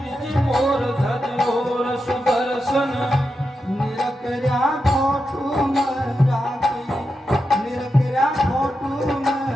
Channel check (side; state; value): both; normal; correlation 0.88